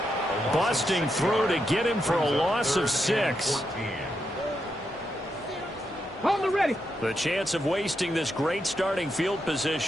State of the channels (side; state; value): both; normal; correlation 0.83